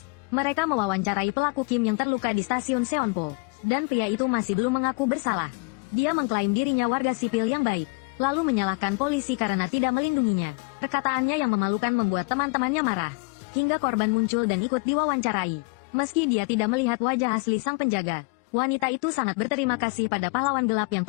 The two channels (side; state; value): right; quieter; 31.5 dB